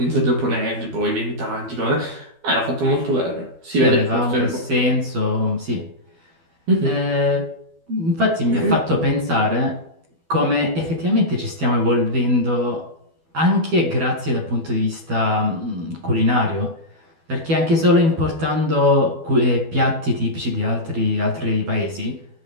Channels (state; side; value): late; left; 12 ms